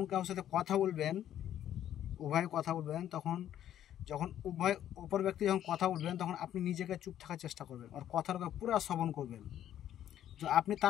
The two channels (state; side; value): quieter; right; 11.2 dB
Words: কারোর সাথে কথা বলবেন, উভয় কথা বলবেন, তখন যখন অপর ব্যক্তি যখন কথা বলবেন, তখন আপনি নিজেকে চুপ থাকার চেষ্টা করবেন, আর কথাটা পুরো শ্রবণ করবেন। যদি আপনি